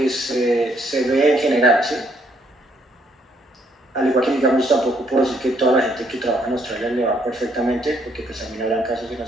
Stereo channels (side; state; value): both; normal; correlation 0.70